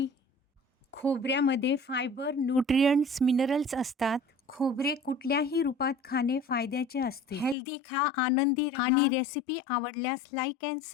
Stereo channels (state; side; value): drops out; right; at 7.6 s